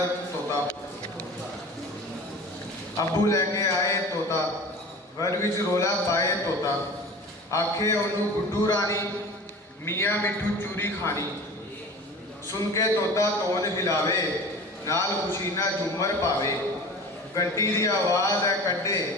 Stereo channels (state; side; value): normal; both; correlation 0.38